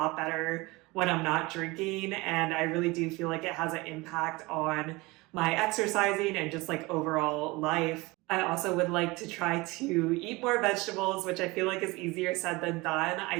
better when I'm not drinking, and I really do feel like it has an impact on my exercising and just like overall life. I also would like to try to eat more vegetables, which I feel like is easier said than done. I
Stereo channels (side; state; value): left; quieter; 23.2 dB